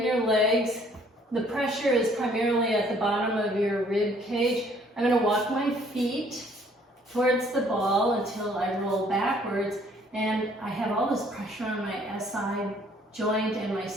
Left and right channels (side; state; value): both; normal; correlation 0.61